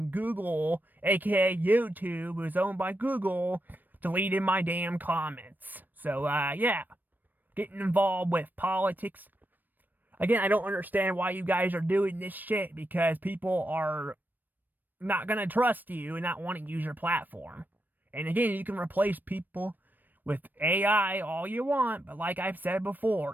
Google, aka YouTube, who's owned by Google, deleted my damn comments. So, yeah. Getting involved with politics. Again, I don't understand why you guys are doing this shit, because people are not gonna trust you and not want to use your platform. And again, you can replace people with AI all you want, but like I've said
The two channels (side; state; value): left; late; 0.090 ms